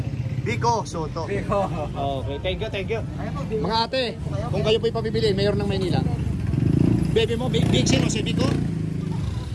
Biko Soto. Okay, thank you. Mga ate, kung kayo po ipapibili, mayor ng Maynila. Baby mo, big sino? Si Biko?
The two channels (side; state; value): both; identical; correlation 1.00